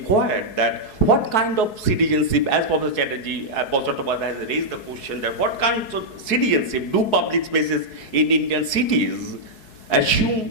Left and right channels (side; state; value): right; late; 4.7 ms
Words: that what kind of citizenship, as Professor Chattopadhyay has raised the question that what kind of citizenship do public spaces in Indian cities